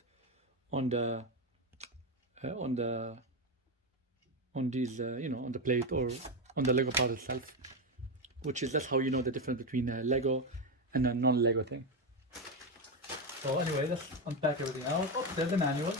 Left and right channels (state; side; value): normal; both; correlation 0.10